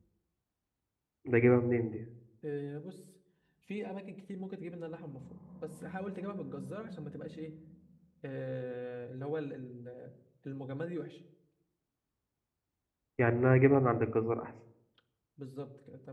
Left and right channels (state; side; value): identical; both; correlation 1.00